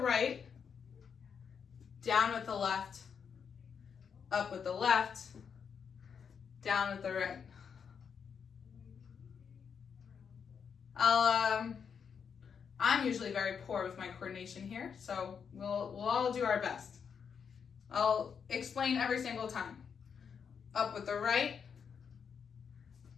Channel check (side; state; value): right; quieter; 6.8 dB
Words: down with the left, up with the left, down with the right. I'm usually very poor with my coordination here, so we'll all do our best. I'll explain every single time. Up with the right,